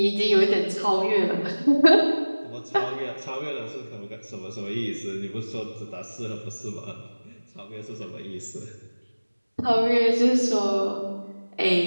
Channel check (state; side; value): inverted; both; correlation -1.00